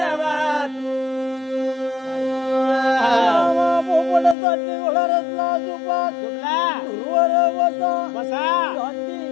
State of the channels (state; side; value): drops out; right; at 4.4 s